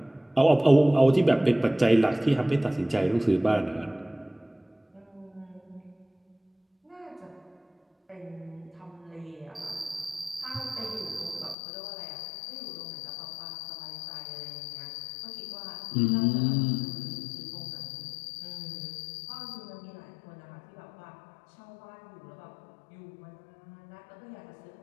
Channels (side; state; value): right; drops out; at 11.6 s